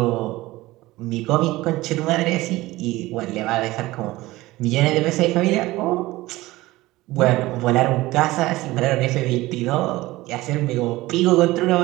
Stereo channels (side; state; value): left; quieter; 18.6 dB